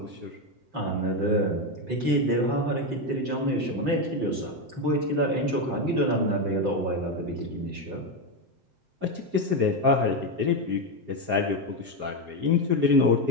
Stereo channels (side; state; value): left; late; 7.7 ms